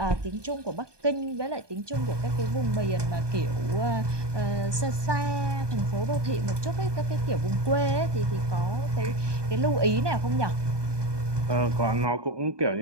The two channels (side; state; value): left; late; 1.2 ms